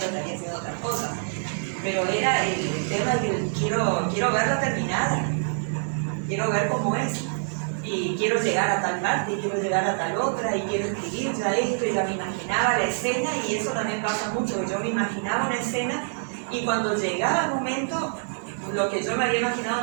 estaría haciendo otras cosas. Pero era el tema de que quiero verla terminada, quiero ver cómo es, y quiero llegar a tal parte, y quiero llegar a tal otra, y quiero escribir ya esto, y ya me imaginaba la escena, y eso también pasa mucho, que yo me imaginaba una escena, y cuando llegaba el momento, lo que yo me había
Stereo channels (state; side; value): silent; left; 61 dB below the other